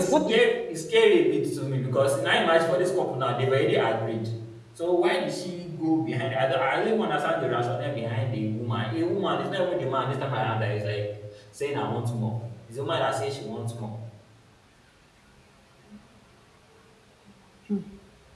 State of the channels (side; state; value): both; identical; correlation 1.00